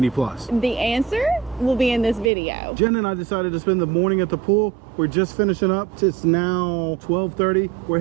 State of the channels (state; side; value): drops out; left; at 2.3 s